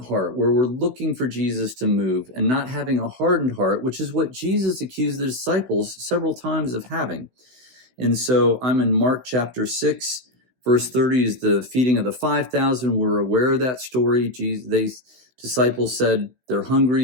heart where we're looking for Jesus to move and not having a hardened heart, which is what Jesus accused the disciples several times of having. And so I'm in Mark chapter 6, verse 30 is the feeding of the 5,000. We're aware of that story. Disciples said they're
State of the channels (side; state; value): left; late; 16 ms